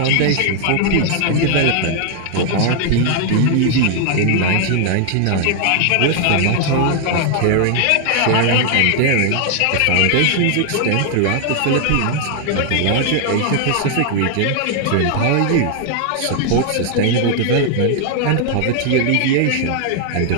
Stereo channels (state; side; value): different; both; correlation 0.00